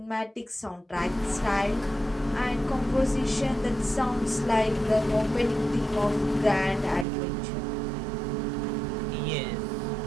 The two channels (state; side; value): drops out; left; at 7.1 s